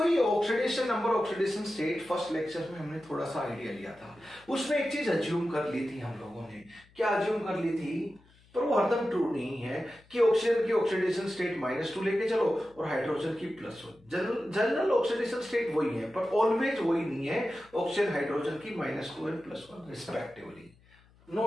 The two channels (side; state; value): left; noise; hum, 29 dB below the sound